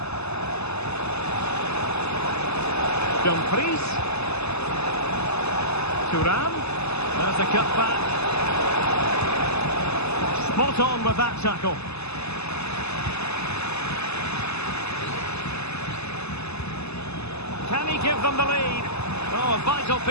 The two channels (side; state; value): right; late; 0.80 ms